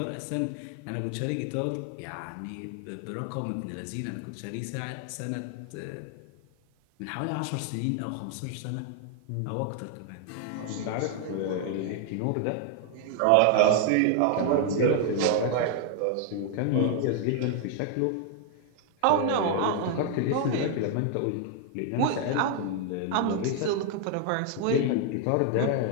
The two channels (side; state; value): both; different; correlation 0.00